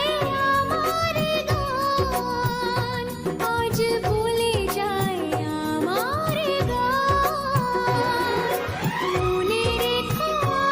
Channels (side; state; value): both; identical; correlation 1.00